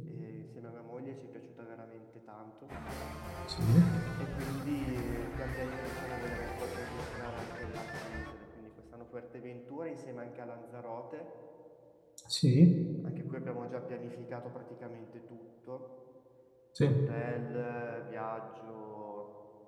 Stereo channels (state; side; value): identical; both; correlation 1.00